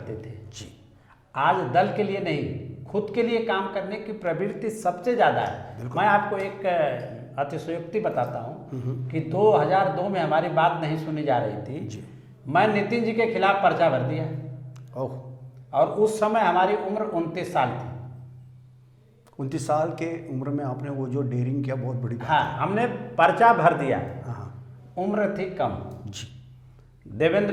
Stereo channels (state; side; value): identical; both; correlation 1.00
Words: थे जी। आज दल के लिए नहीं, खुद के लिए काम करने की प्रवृत्ति सबसे ज़्यादा है। मैं आपको एक अतिशयोक्ति बताता हूँ कि 2002 में हमारी बात नहीं सुनी जा रही थी जी। मैं नितिन जी के खिलाफ पर्चा भर दिया ओह, और उस समय हमारी उम्र 29 साल थी। 29 साल के उम्र में आपने वो जो डेयरिंग किया, बहुत बड़ी बात हाँ, हमने पर्चा भर दिया। है। हाँ उम्र थी कम। जी।